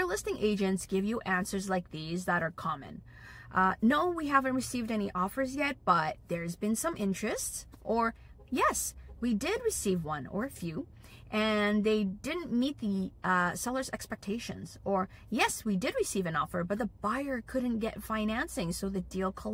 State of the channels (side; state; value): both; identical; correlation 1.00